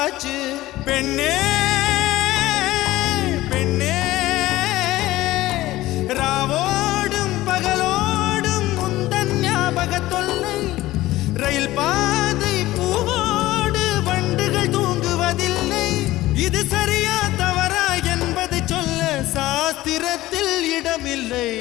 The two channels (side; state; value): right; quieter; 16.8 dB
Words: பெண்ணே பெண்ணே ராவோடும் பகலோடும் உந்தன் ஞாபக தொல்லை ரயில் பாதை பூவோடு வண்டுகள் தூங்குவதில்லை இது சரியா தவறா என்பதை சொல்ல சாஸ்திரத்தில் இடமில்லை